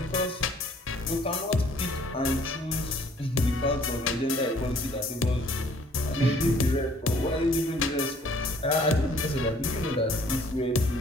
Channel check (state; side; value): normal; both; correlation 0.58